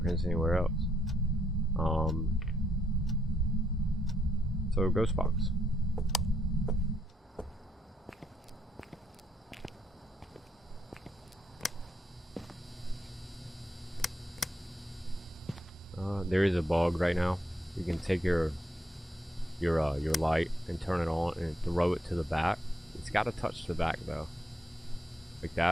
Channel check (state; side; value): normal; both; correlation 0.76